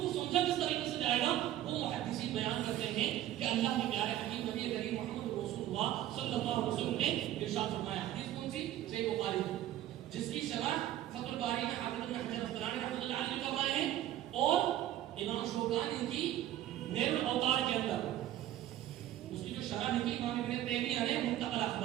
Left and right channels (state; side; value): quieter; left; 13.0 dB